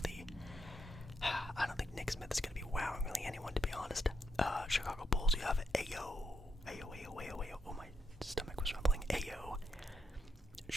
I don't think Nick Smith is going to be wowing really anyone, to be honest. Chicago Bulls, you have Ayo. Oh, my stomach was rumbling. Ayo.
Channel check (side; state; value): both; normal; correlation 0.80